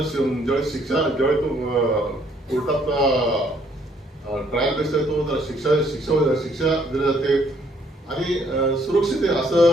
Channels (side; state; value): both; normal; correlation 0.66